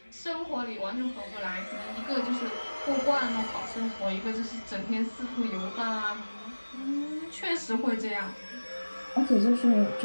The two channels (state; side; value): inverted; both; correlation -1.00